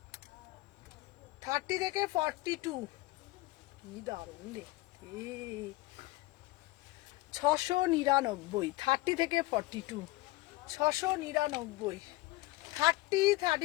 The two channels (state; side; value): quieter; right; 19.8 dB